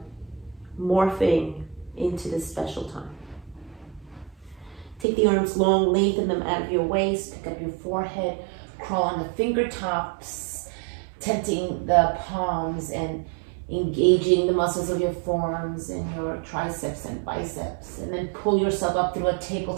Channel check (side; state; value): left; drops out; at 5.1 s